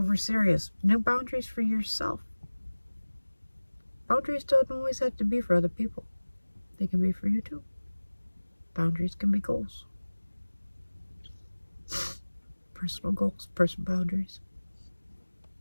serious. New boundaries for yourself. Boundaries don't always have to be for other people. They can be for you too. Boundaries can be goals. Personal goals, personal boundaries.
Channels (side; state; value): both; inverted; correlation -1.00